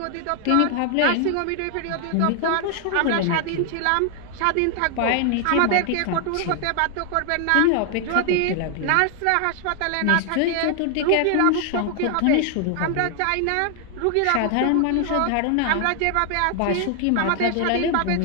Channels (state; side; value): different; both; correlation 0.00